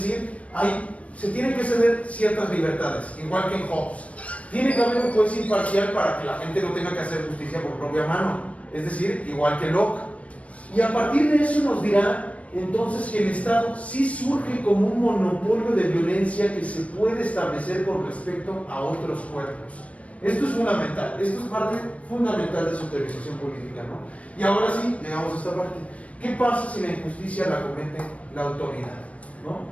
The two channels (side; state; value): right; late; 0.065 ms